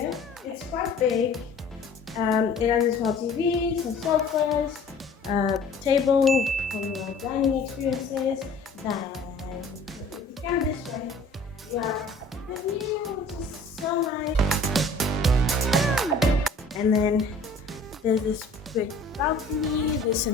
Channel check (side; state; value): right; quieter; 3.1 dB